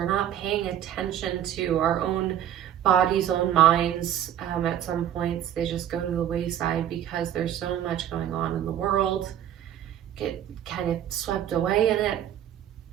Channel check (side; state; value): left; quieter; 10.7 dB